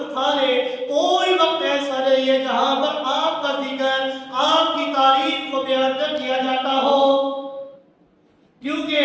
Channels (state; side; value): identical; both; correlation 1.00